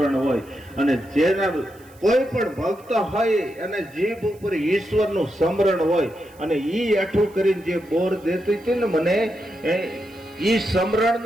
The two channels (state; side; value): noise; right; hiss, 28 dB below the sound